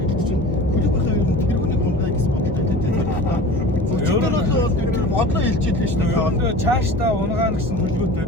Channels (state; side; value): normal; both; correlation 0.38